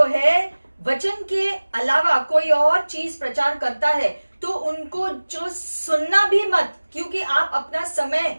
है वचन के अलावा कोई और चीज प्रचार करता है तो उनको जो सुनना भी मत, क्योंकि आप अपना समय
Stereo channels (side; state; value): both; inverted; correlation -1.00